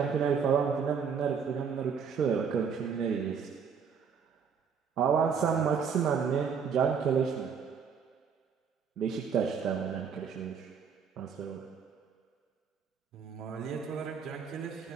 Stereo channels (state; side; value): quieter; left; 6.5 dB